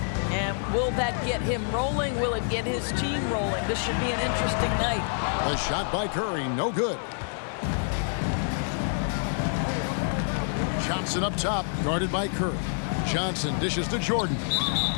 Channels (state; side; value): silent; right; 56 dB below the other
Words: And will that get him rolling? Will it get his team rolling? This should be an interesting night. A shot by Curry, no good. Johnson up top, guarded by Curry. Johnson dishes to Jordan.